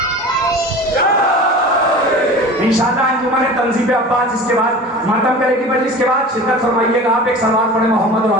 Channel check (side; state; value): both; normal; correlation 0.37